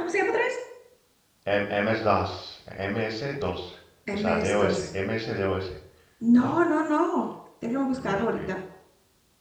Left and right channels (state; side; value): identical; both; correlation 1.00